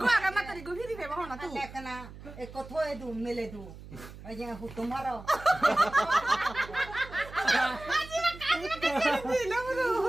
গো আগা মাতারি গো ফিরি ফেবা হনা তু লেখনা এক কথই দু মেলে দু ওই যে হুতুম মারো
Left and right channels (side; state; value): right; noise; hum, 15 dB below the sound